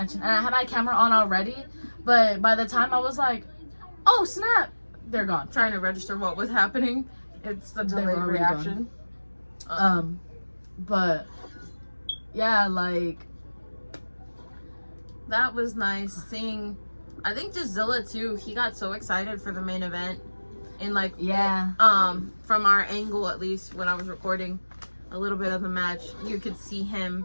and I had my camera on already. But by the time I was like, "Oh snap!" they're gone. Trying to register what was happening. It's the They were delayed already reaction. But yeah, like That was nice seeing. I think just Zilla too. He got so excited for the main event, and like yeah, from our angle at least when I was recording a little bit of the match, you could see him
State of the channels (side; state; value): both; inverted; correlation -1.00